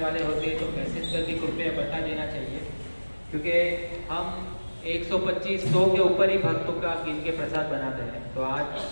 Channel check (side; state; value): both; inverted; correlation -1.00